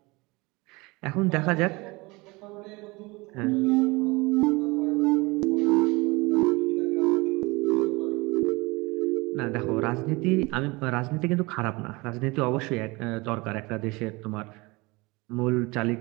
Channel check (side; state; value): left; quieter; 24.4 dB